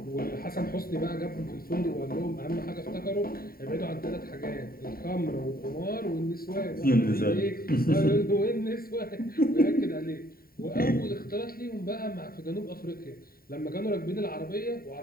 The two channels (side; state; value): right; late; 0.43 ms